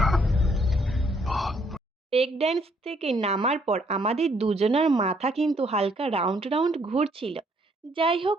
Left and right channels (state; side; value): normal; both; correlation 0.68